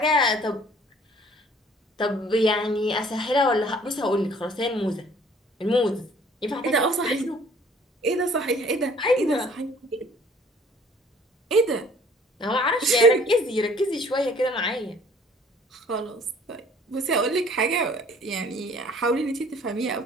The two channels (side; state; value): both; normal; correlation 0.54